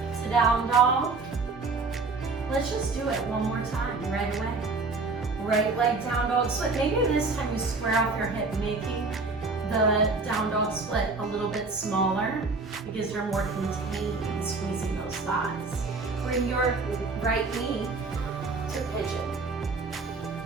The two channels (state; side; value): quieter; left; 3.9 dB